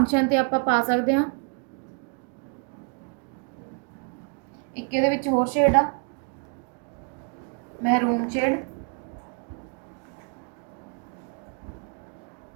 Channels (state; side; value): quieter; left; 38.1 dB